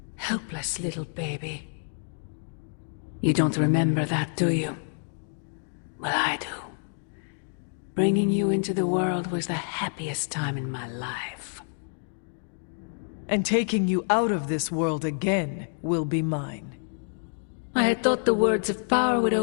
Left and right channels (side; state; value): right; silent; 55 dB below the other